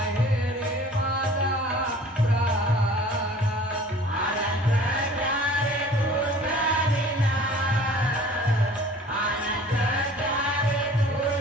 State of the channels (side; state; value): both; normal; correlation 0.48